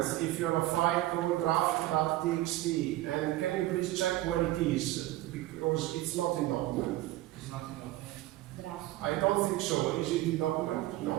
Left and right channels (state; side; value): quieter; left; 16.3 dB